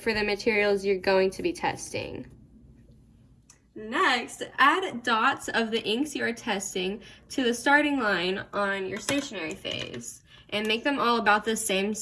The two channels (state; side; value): identical; both; correlation 1.00